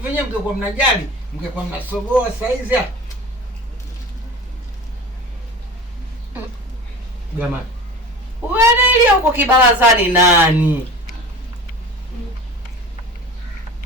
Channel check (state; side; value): normal; both; correlation 0.35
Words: nyewe mngekuwa mnajali, mngekuwa mnasogoa saizi hapa. Jamani. Wewe ile huko kibarazani nani?